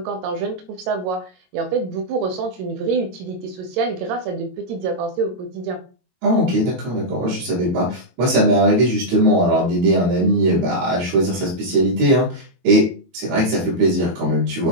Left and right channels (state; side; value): late; left; 22 ms